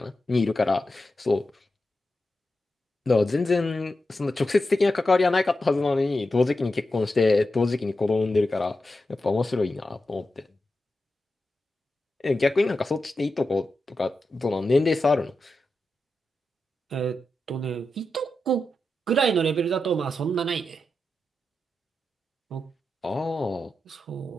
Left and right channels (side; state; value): both; normal; correlation 0.90